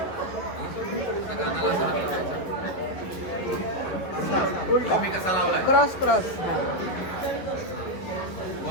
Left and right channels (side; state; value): right; late; 11 ms